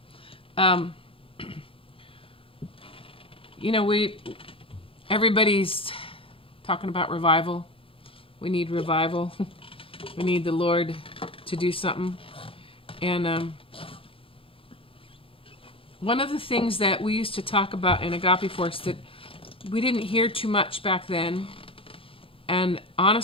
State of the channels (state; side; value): late; right; 0.26 ms